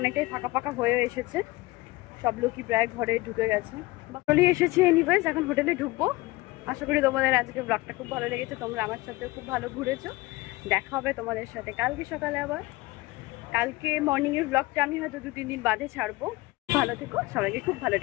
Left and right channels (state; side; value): quieter; right; 20.9 dB